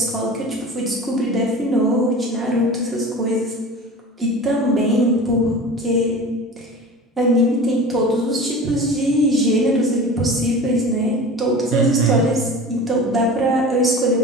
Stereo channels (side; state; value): both; normal; correlation 0.36